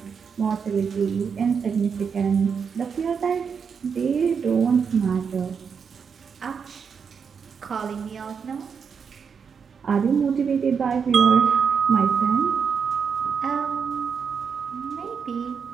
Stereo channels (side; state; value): left; quieter; 6.3 dB